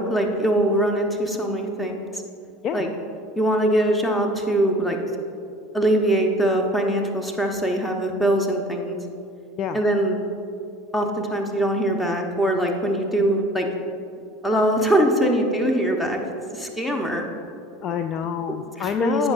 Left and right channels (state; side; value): normal; both; correlation 0.50